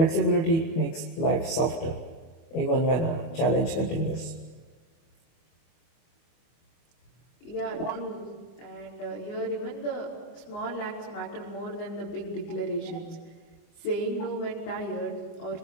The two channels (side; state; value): right; late; 25 ms